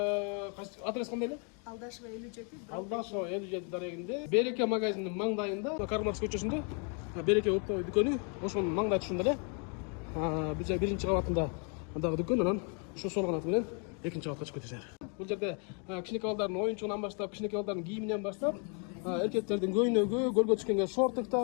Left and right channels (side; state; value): right; quieter; 38.7 dB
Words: адрес кандай эле? Алдашева 57. Алдашева 57 дарегинде, Береке магазининин маңдайында, Карл Маркс көчөсүндө, Береке оптовый дүкөнү, ошонун маңдай түшүндө эле. Биз 1-чи кабатында дагы дүкөн, анан ушу сол канаты менен 2-чи кабатка чыгып кетесиңер. Бул жерде кичинекей балдардын оюнчугунан баштап, кичинекей балдардын кийиминен баштап, эркектердин көйнөгү, көлгө түшкөнгө